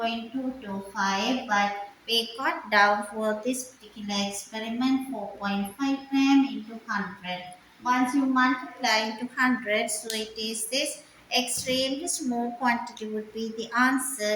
but we got down for this particular experiment 4.5 gram into 100. Once you multiply into 100, so it is this extremely small quantity would be the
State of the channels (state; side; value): identical; both; correlation 1.00